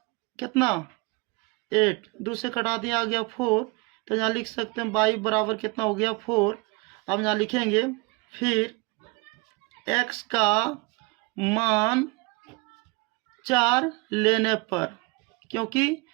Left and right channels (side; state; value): left; quieter; 26.5 dB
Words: कितना 8, 2 से कटा दिया आ गया 4, तो यहाँ लिख सकते हैं बाई बराबर कितना हो गया 4। अब यहाँ लिखेंगे फिर x का मान 4 लेने पर, क्योंकि